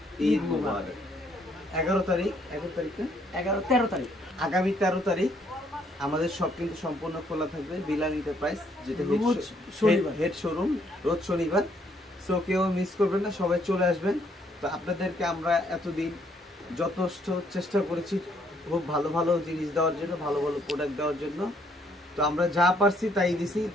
ঈদ মুবারক। 11 তারিখ আগামী 13 তারিখ আমাদের সব কিন্তু সম্পূর্ণ খোলা থাকবে বিলাল এন্টারপ্রাইজ, যেটা হেড শোরুম, রোজ শনিবার। সো কেউ মিস করবেন না, সবাই চলে আসবেন। তো আপনাদেরকে আমরা এতদিন যথেষ্ট চেষ্টা করেছি খুব ভালো ভালো জিনিস দেওয়ার জন্য, ভালো ভালো প্রোডাক্ট দেওয়ার জন্য। তো আমরা যা পারছি তাই দিছি।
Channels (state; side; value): normal; both; correlation 0.68